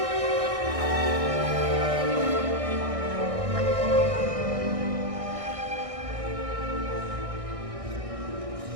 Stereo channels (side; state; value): left; late; 1.6 ms